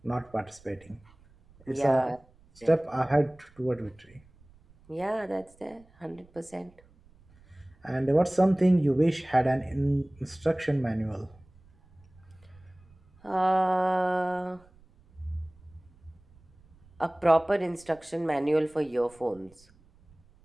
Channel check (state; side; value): noise; right; rumble, 28 dB below the sound